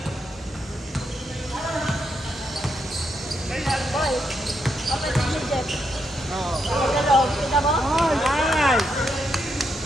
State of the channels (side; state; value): both; normal; correlation 0.80